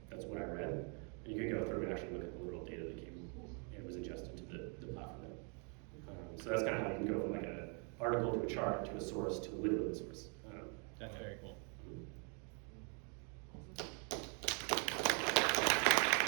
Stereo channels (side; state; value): left; quieter; 37.9 dB